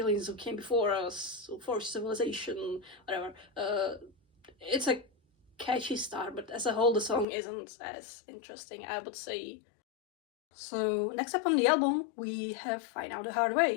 who came before us, for civilization, whatever. It's a catchy start, but as a whole, the song isn't as interesting, I would say. So next up on the album, we have Find Out the Hard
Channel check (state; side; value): drops out; right; at 7.2 s